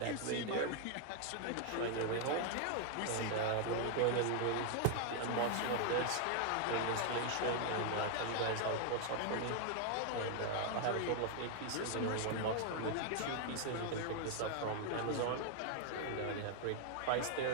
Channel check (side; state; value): both; different; correlation 0.00